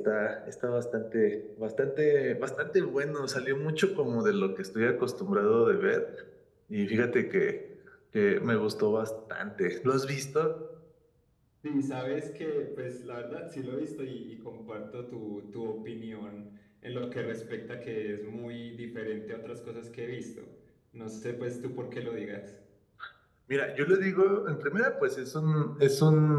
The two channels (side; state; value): both; identical; correlation 1.00